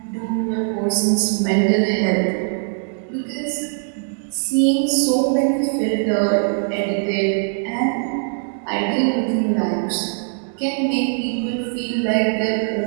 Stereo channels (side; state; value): left; silent; 64 dB below the other